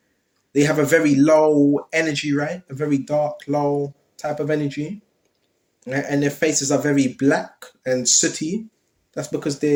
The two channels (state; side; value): identical; both; correlation 1.00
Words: they have a very low energy, right? A very dark, low type of energy, right? And their faces are very black and sooty. That's because